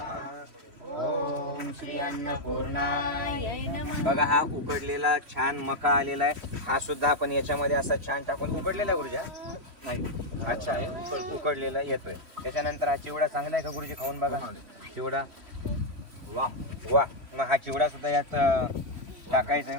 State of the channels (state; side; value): late; left; 3.1 ms